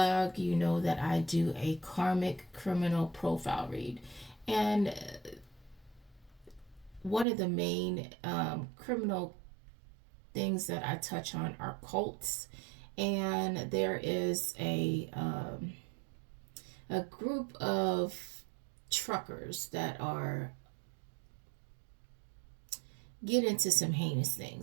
you know that I do a karmic criminal profile read. And one of the main criminal things that I touch on are cults. And there is a group of truckers that are get into some heinous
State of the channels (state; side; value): drops out; left; at 7.2 s